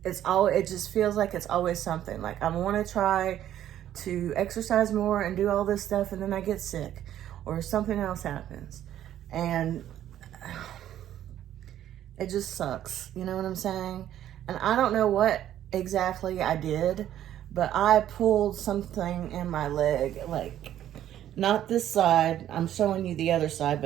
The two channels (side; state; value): left; quieter; 11.6 dB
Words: it just feels like it's always something. Like I want to try to exercise more and do all this stuff, and then I get sick or something else happens, and it just sucks. You know what I'm saying? And I don't know what exactly I did, but I pulled something in my leg, like not this side. I'm showing you the other side,